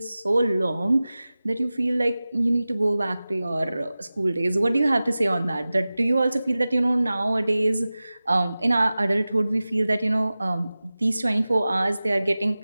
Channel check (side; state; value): both; inverted; correlation -0.97